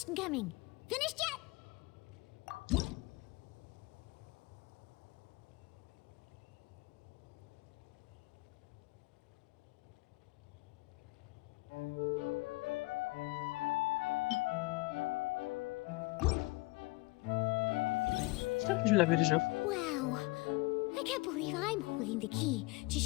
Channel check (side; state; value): right; quieter; 23.7 dB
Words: coming? Finished yet? Je l'avais déjà. Wow. I can't believe I'm holding the key to